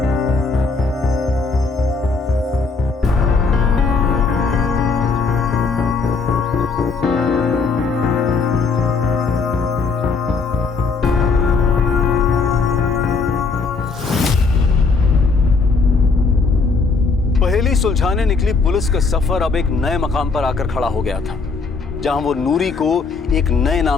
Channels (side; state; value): right; quieter; 4.5 dB